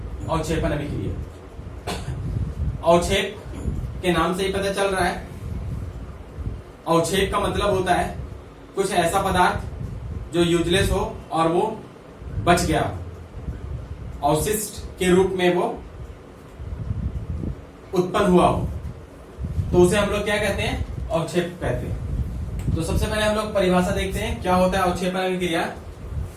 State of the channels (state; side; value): identical; both; correlation 1.00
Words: अवक्षेपण अभिक्रिया। अवक्षेप के नाम से ही पता चल रहा है, अवक्षेप का मतलब होता है कुछ ऐसा पदार्थ जो यूजलेस हो और वो बच गया, अवशिष्ट के रूप में वो उत्पन्न हुआ हो, तो उसे हम लोग क्या कहते हैं? अवक्षेप कहते हैं। तो सबसे पहले हम लोग परिभाषा देखते हैं क्या होता है अवक्षेपण अभिक्रिया।